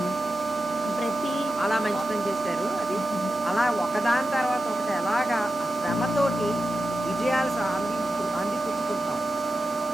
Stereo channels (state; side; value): normal; both; correlation 0.91